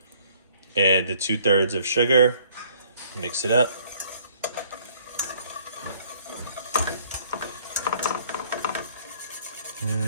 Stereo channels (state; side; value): inverted; both; correlation -0.60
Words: Add the 2/3 of sugar. Mix it up.